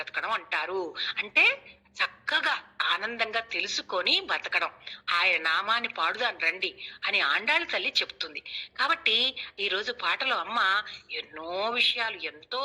అంటారు. అంటే చక్కగా ఆనందంగా తెలుసుకొని బతకడం, ఆయన నామాన్ని పాడుదాని రండి అని ఆండాళ్ళ తల్లి చెప్తుంది. కాబట్టి ఈరోజు పాటలో అమ్మ ఎన్నో విషయాలు ఎంతో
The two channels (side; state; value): both; identical; correlation 1.00